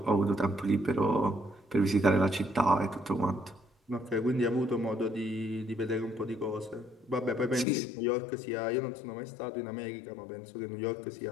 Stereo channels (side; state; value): right; drops out; at 7.7 s